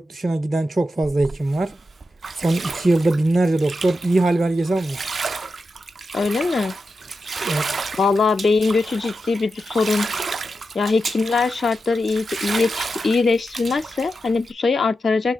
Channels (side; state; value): both; normal; correlation 0.89